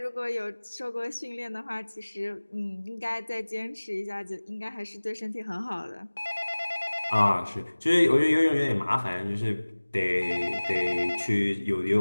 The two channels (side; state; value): both; inverted; correlation -1.00